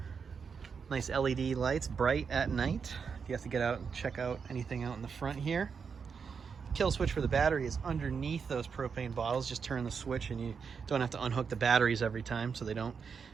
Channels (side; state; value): left; quieter; 6.0 dB